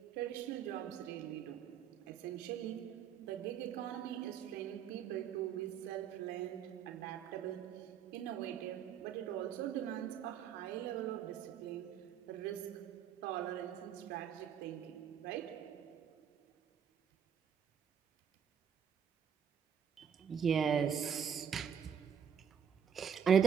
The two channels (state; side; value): quieter; left; 8.1 dB